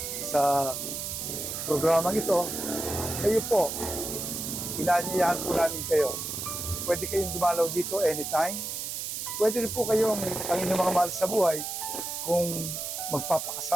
sa programang ito, kayo po, inaanyayahan po namin kayo. Pwede kayong dumalaw dito anytime. Pwede rin po kayong, ang inyong mga mahal sa buhay, kung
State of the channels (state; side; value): noise; right; hiss, 5 dB below the sound